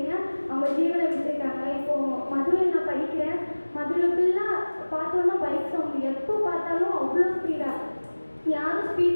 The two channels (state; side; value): inverted; both; correlation -1.00